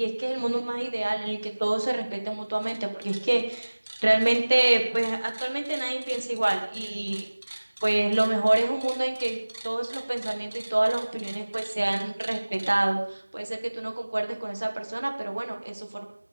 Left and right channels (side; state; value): both; inverted; correlation -1.00